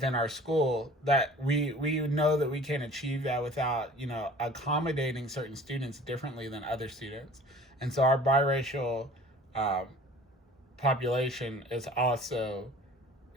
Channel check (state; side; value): normal; both; correlation 0.46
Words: our school, that we know that we can't achieve that without accommodating certain students differently than other students. And so our biracial population is also